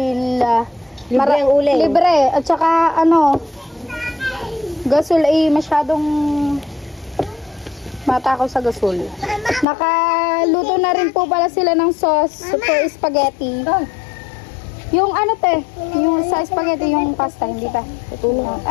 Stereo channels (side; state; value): right; drops out; at 9.7 s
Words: libre ang uling. Libre at saka gasol ay masyadong matakaw sa gasol. Nakaluto na rin po pala sila ng sauce for spaghetti. Yung yung sa spaghetti, yung pasta, hindi pa.